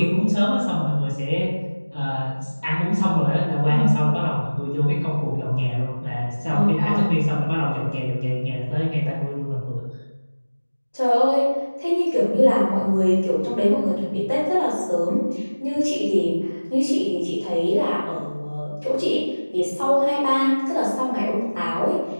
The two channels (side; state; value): both; inverted; correlation -1.00